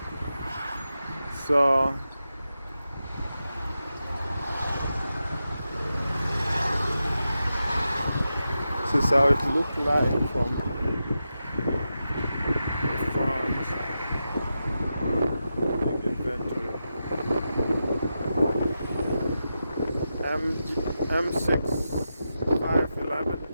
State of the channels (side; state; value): both; inverted; correlation -0.89